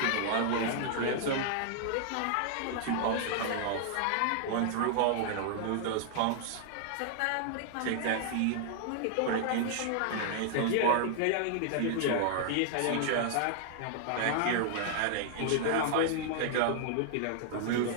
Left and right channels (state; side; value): different; both; correlation -0.01